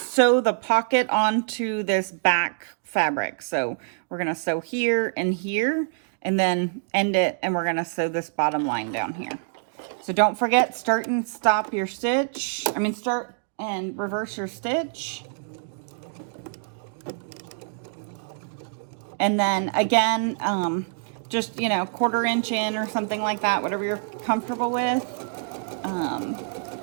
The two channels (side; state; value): left; silent; digital silence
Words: sew the pocket onto this back fabric. So we're gonna sew here and here and then end it, and we're gonna sew this bottom line down here. So don't forget, start and stop your stitch. I mean, start and reverse your stitch. And then again, just, you know, 1/4 inch in or something like that, whatever you're comfortable with.